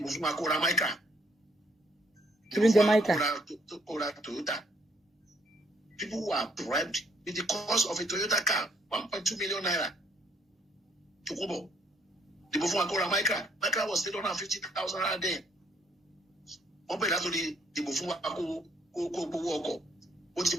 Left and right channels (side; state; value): both; normal; correlation 0.68